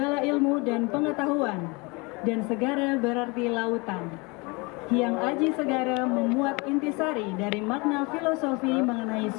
ilmu dan pengetahuan, dan segara berarti lautan. Hyang Aji Segara memuat intisari dari makna filosofi mengenai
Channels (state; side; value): quieter; right; 27.5 dB